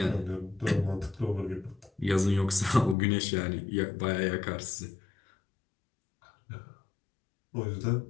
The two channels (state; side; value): drops out; right; at 3.0 s